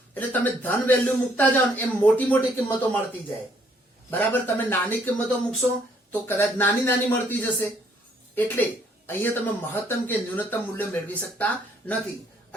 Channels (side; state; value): both; normal; correlation 0.66